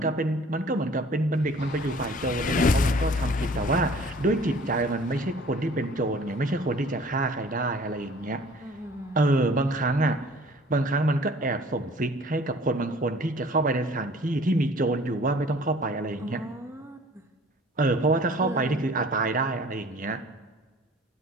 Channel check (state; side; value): normal; both; correlation 0.50